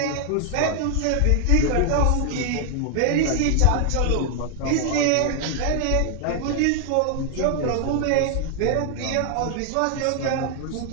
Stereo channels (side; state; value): both; different; correlation 0.00